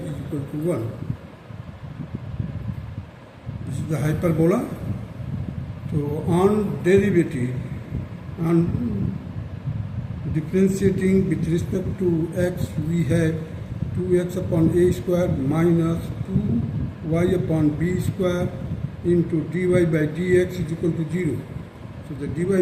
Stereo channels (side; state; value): both; identical; correlation 1.00